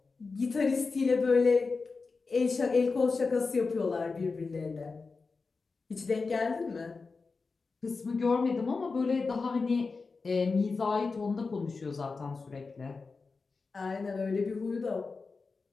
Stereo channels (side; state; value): right; quieter; 4.3 dB